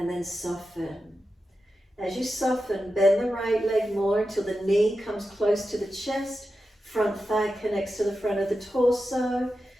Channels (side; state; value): both; normal; correlation 0.91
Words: then soften. As you soften, bend the right leg more until the knee comes close to the chest, front thigh connects to the front of the torso,